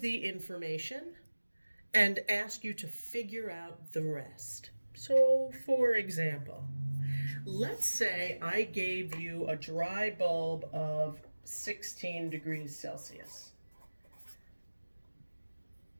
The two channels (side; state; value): both; inverted; correlation -1.00